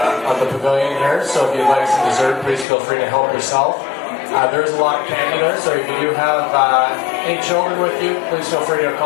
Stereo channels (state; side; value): drops out; right; at 2.7 s